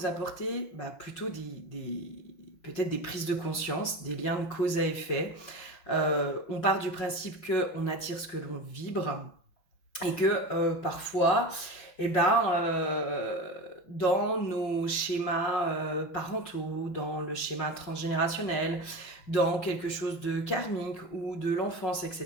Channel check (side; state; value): right; late; 5.5 ms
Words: apporter plutôt peut-être des prises de conscience, des liens de cause à effet. On part du principe qu'on attire ce que l'on vibre et que parfois, dans nos schémas parentaux, dans le schéma transgénérationnel, dans quelque chose de karmique ou de l'enfance,